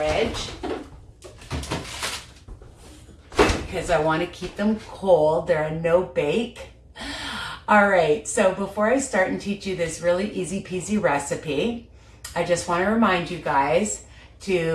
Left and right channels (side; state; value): both; identical; correlation 1.00